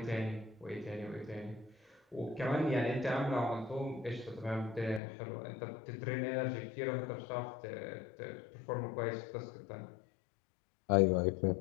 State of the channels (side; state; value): right; drops out; at 5.0 s